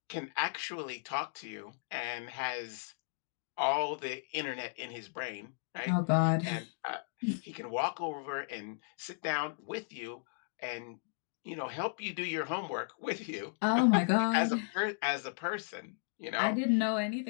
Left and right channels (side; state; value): right; silent; digital silence